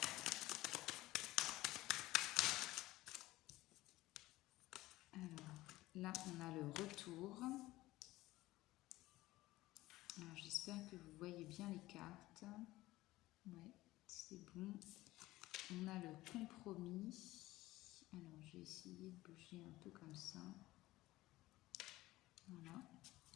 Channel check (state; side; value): quieter; right; 17.7 dB